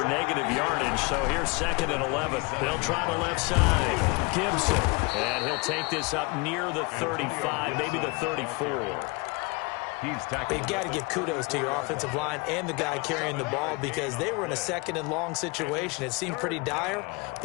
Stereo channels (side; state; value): right; quieter; 27.8 dB